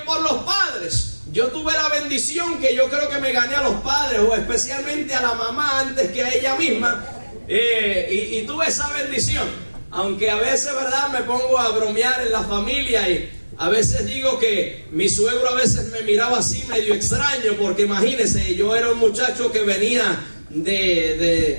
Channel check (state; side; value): inverted; both; correlation -1.00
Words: por los padres. Yo tuve la bendición que yo creo que me gané a los padres, o especialmente a la mamá antes que a ella misma, y tuve esa bendición. Aunque a veces, ¿verdad?, me pongo a bromear en la familia y a veces digo que mi suegro a veces me miraba así medio extraño, porque imagínense, yo era un muchacho que venía